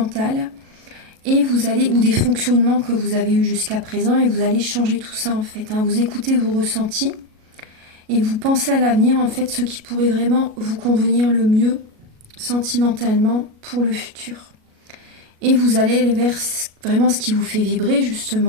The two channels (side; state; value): left; late; 37 ms